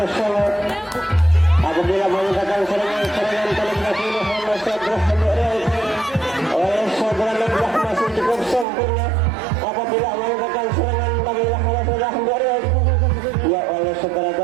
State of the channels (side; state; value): left; drops out; at 8.7 s